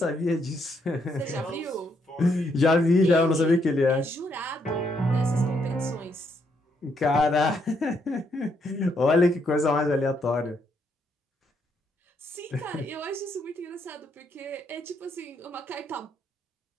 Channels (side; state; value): both; normal; correlation 0.75